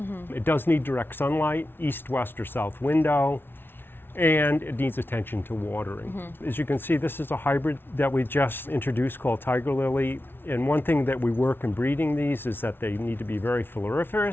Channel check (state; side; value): late; right; 0.11 ms